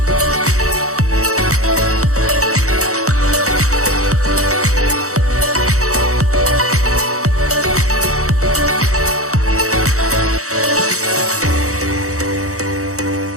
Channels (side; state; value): left; late; 0.65 ms